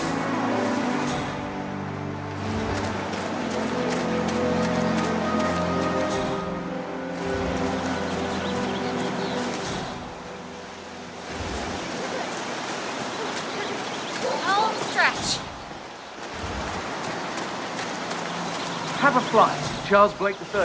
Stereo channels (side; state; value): both; identical; correlation 1.00